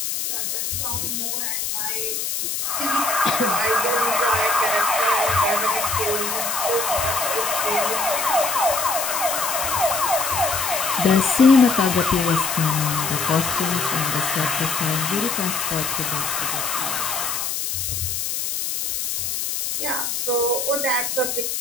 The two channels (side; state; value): left; noise; hiss, 2 dB below the sound